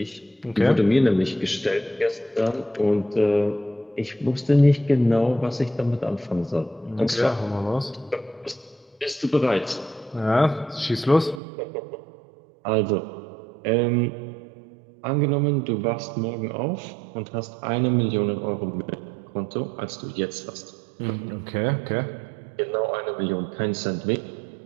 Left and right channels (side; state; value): left; drops out; at 11.4 s